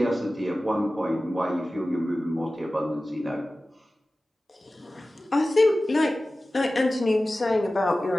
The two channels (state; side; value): normal; both; correlation 0.96